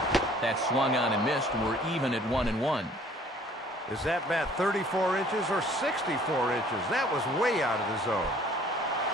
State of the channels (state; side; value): normal; both; correlation 0.55